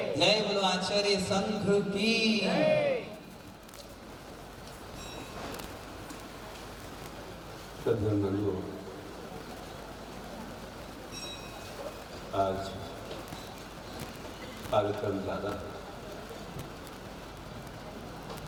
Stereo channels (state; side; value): identical; both; correlation 1.00